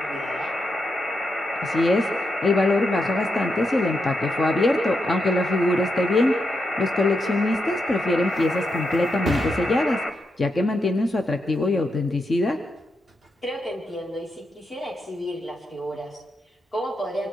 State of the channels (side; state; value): both; normal; correlation 0.84